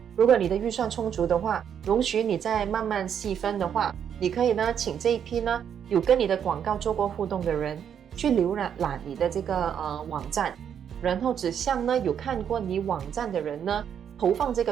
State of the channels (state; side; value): quieter; left; 8.5 dB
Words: 如果你的预算充足的话，容许你再慢慢细分的话，你可以呢请这一批呢有跟你的广告做过互动的人去浏览你的这个网站，然后只向呢有看过你网站的人呢投放这